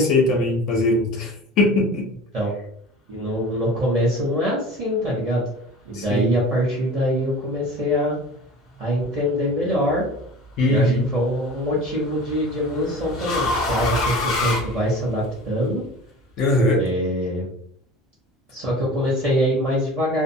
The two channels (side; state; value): both; normal; correlation 0.40